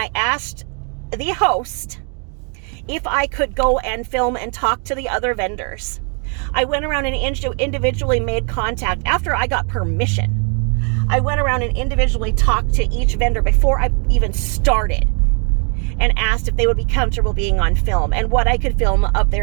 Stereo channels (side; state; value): left; quieter; 39.2 dB